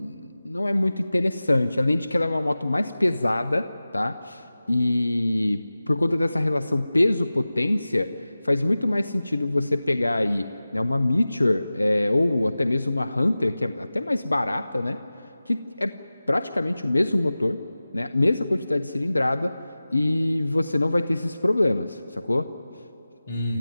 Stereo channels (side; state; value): both; inverted; correlation -0.96